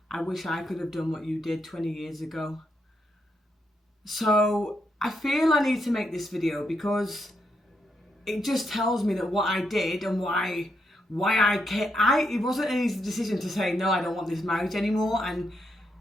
I wish I could have done what you did 20 years ago. So I feel I need to make this video because it just tells me that what I did and why it wasn't an easy decision to say, no, I don't want this marriage anymore. And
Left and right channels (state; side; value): normal; both; correlation 0.80